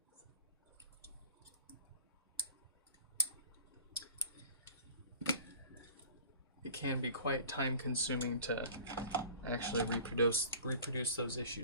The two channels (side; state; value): both; inverted; correlation -0.44